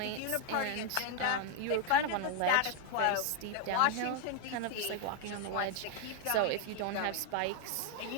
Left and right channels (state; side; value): different; both; correlation 0.01